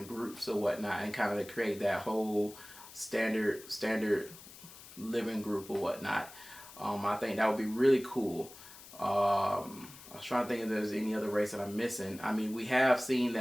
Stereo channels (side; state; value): left; noise; hiss, 18 dB below the sound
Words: groups or whatnot, and kind of create that whole standard living group or whatnot. I think that would be really cool. I was trying to think if there's any other race that I'm missing. I mean, we have seen